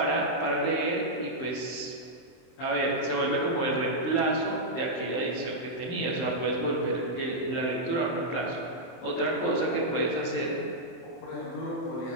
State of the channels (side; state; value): right; late; 24 ms